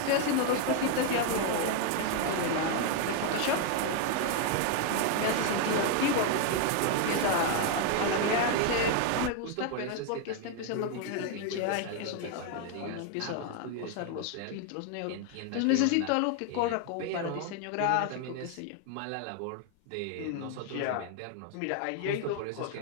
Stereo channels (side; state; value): both; different; correlation 0.01